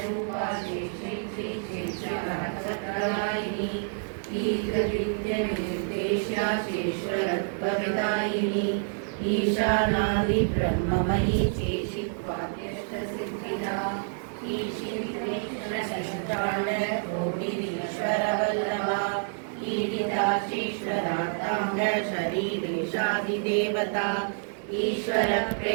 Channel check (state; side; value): silent; left; digital silence